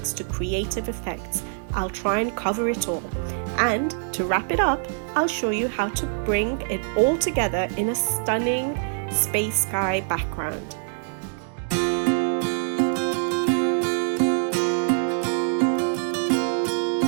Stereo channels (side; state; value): left; silent; digital silence